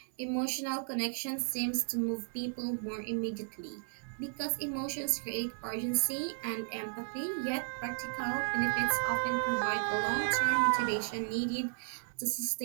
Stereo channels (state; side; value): silent; left; digital silence